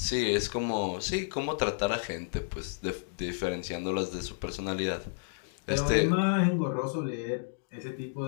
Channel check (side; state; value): right; silent; digital silence